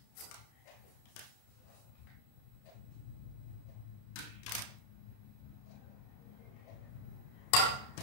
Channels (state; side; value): late; right; 31 ms